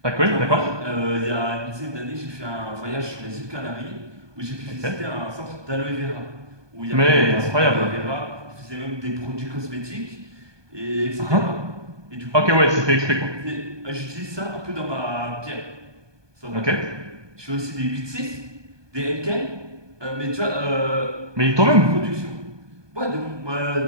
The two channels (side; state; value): left; late; 1.2 ms